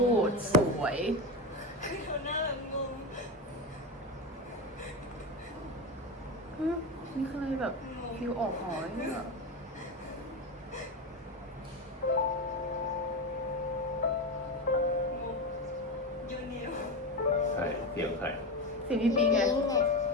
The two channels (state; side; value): normal; both; correlation 0.19